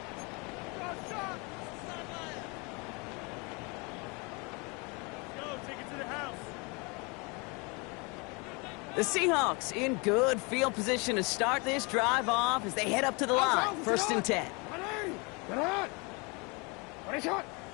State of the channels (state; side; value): quieter; right; 29.5 dB